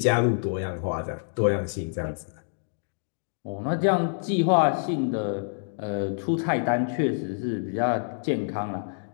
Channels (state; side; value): silent; right; digital silence